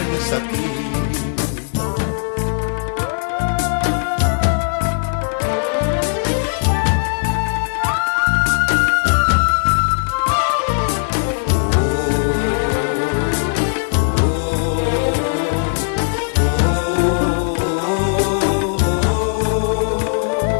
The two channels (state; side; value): silent; right; 67 dB below the other